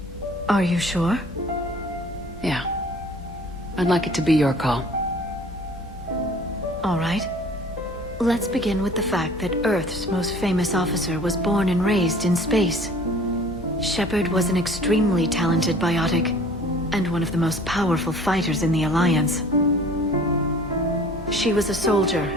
Are you sure? Yeah. I'd like it to be your call. All right. Let's begin with the fact that Earth's most famous officer was born and raised in space. Shepard was an extremely talented biotic, and one of the most powerful fighters in the Alliance. She was a soldier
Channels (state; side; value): normal; both; correlation 0.49